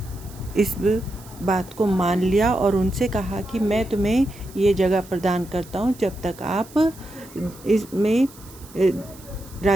इस बात को मान लिया और उनसे कहा कि मैं तुम्हें ये जगह प्रदान करता हूँ, जब तक आप इसमें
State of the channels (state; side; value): noise; right; hiss, 21 dB below the sound